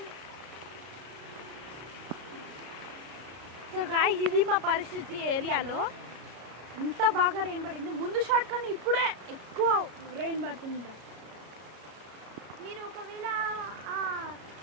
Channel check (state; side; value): late; left; 33 ms